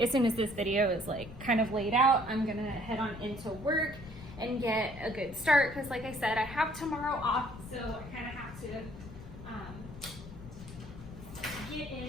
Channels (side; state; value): left; noise; rumble, 14 dB below the sound